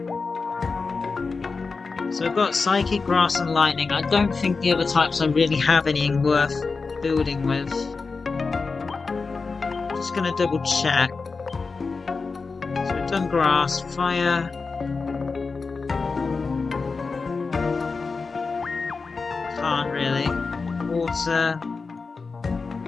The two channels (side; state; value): right; quieter; 4.4 dB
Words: So I've got Psychic, Grass and Lightning. I don't think the other types I really have anything worth building with. Just gonna double check. So we've done Grass, Fire.